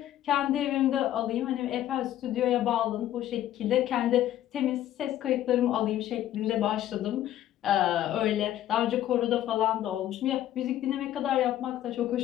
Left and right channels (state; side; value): quieter; right; 12.5 dB